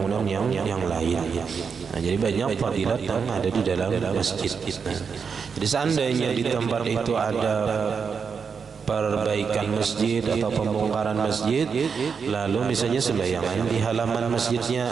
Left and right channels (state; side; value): quieter; left; 6.0 dB